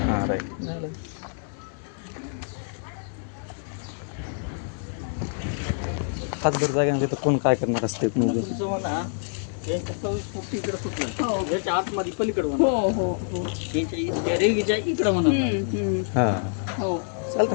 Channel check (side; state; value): right; silent; digital silence